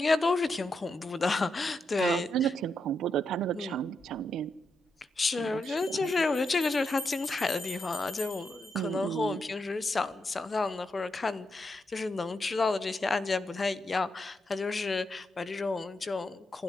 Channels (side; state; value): both; normal; correlation 0.83